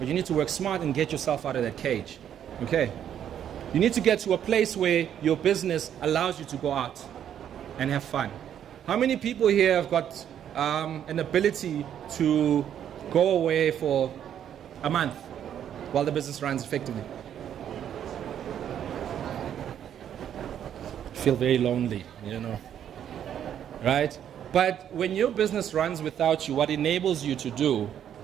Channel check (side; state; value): left; quieter; 9.7 dB